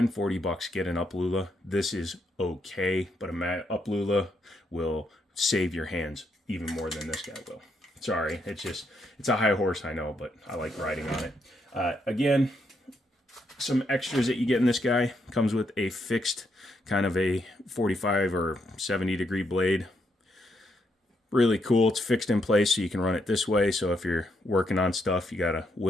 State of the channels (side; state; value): both; normal; correlation 0.77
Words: 40 bucks, get an Uplula. This is okay, but a Uplula will save your hands even more than this guy will. Sorry, it's a high horse, I know, but I like riding on it. Again, some extras that you get in this guy. Comes with a fixed kind of a 45 or 70 degree blade. Really cool. It's fixed in place so you can run it this way. So if you're working on stuff, you got to